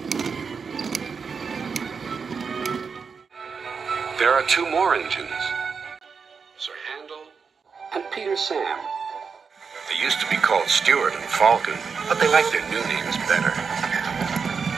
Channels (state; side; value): quieter; left; 5.6 dB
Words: There are two more engines, Sir Handel and Peter Sam. They used to be called Stuart and Falcon, but they like their new names better.